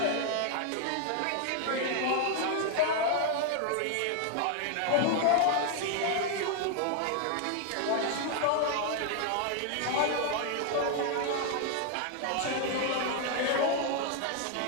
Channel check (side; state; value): both; different; correlation 0.00